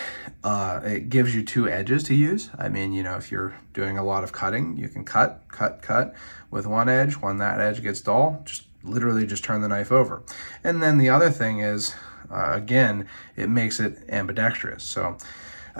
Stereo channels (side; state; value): both; inverted; correlation -1.00